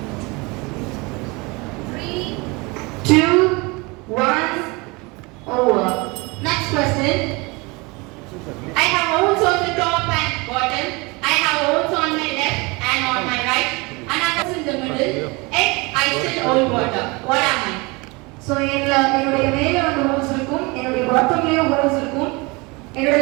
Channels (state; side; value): quieter; left; 26.3 dB